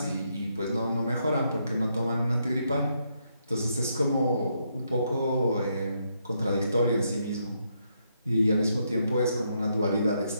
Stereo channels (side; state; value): both; inverted; correlation -0.77